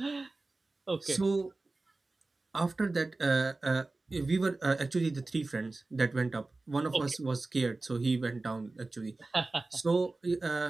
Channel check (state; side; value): quieter; left; 3.3 dB